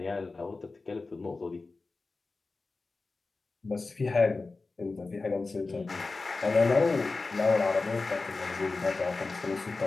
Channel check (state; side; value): quieter; right; 3.7 dB